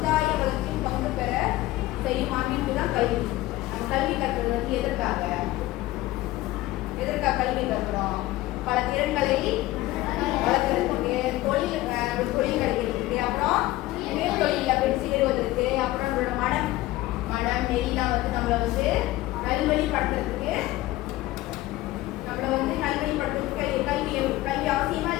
வளர்ச்சியும் பங்கு பெற செய்யும் அமைப்பு தான் கல்வி. நம்ம கல்வி கற்கிறது வந்து எதற்காக கல்வி கற்கிறோம்? பல திறன்களை வளர்க்கறதுக்கு, தொழில் கிடைக்கிறதுக்கு, அப்புறம் தொழிலில் போய் சேருவதற்கு, அப்புறம் நம்மளோட மனம் நெறிலாம் வந்து நம்மளை வந்து நல்வழிப்படுத்துறதுக்கு கல்வி அவசியமா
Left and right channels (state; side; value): quieter; right; 17.2 dB